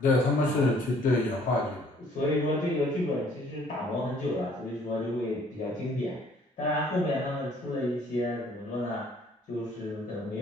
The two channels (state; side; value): normal; both; correlation 0.59